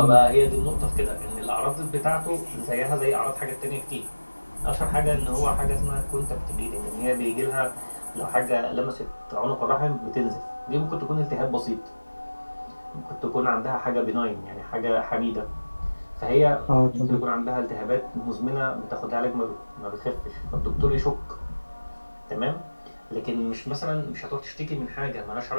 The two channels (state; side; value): inverted; both; correlation -1.00